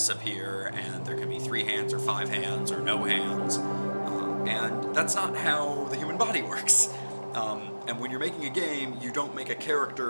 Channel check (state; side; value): inverted; both; correlation -1.00